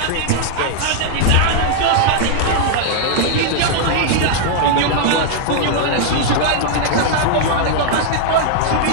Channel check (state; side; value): different; both; correlation -0.01